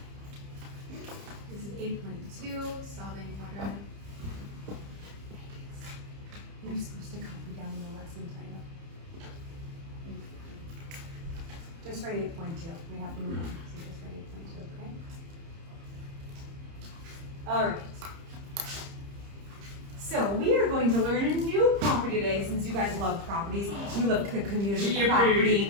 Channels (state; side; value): late; left; 30 ms